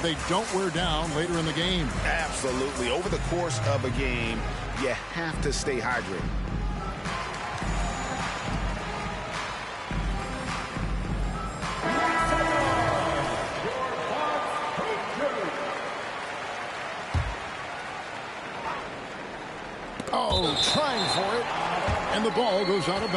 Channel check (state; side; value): identical; both; correlation 1.00